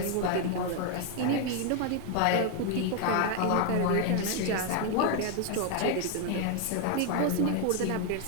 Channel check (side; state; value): both; different; correlation 0.01